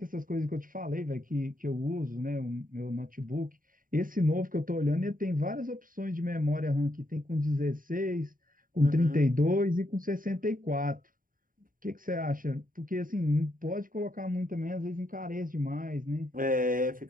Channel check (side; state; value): left; late; 0.40 ms